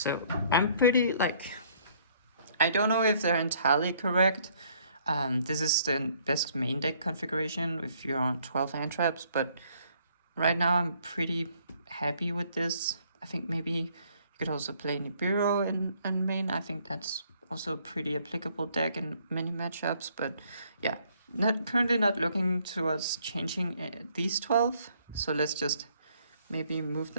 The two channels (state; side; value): inverted; both; correlation -0.64